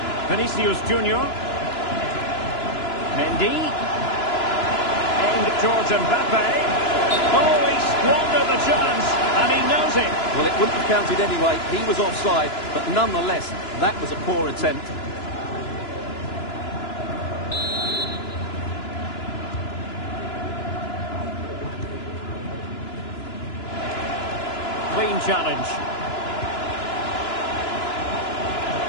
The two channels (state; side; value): late; right; 2.9 ms